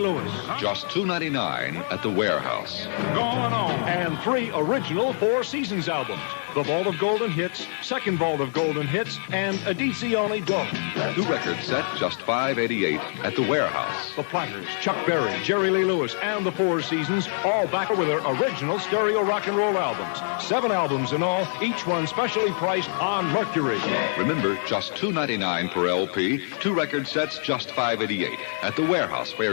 Lewis. Just $2.99 at the warehouse. Going on. And 3 original Four Seasons albums. The Vault of Golden Hits, Second Vault of Golden Hits, and Edizione Dope. 2 record set, just $5.88 at the warehouse. The Platters, Chuck Berry, Jerry Lee Lewis, and the Four Seasons, all back with their original stereo rock and roll albums. 7 albums in all, each one specially priced on Mercury. Remember, just $2.99 per LP. 2 record sets, just $5.88 at the warehouse,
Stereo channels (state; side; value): silent; right; digital silence